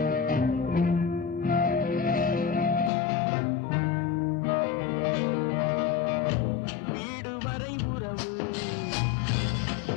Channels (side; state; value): right; drops out; at 2.9 s